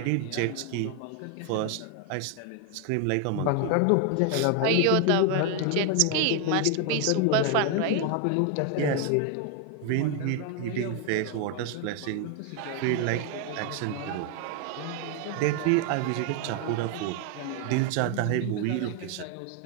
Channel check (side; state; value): both; different; correlation 0.01